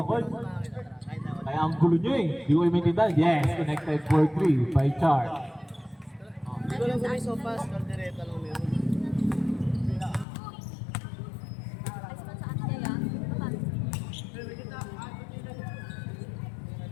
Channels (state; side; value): drops out; right; at 10.2 s